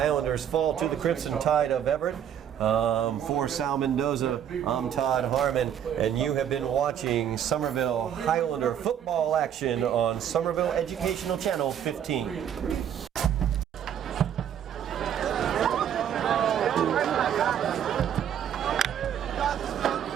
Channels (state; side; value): quieter; left; 9.4 dB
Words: fall to the Crimson Tide of Everett. For Sal Mendonça, I'm Todd Harmon, and you have been watching Somerville Highlander football action on Somerville Educational Channel 15.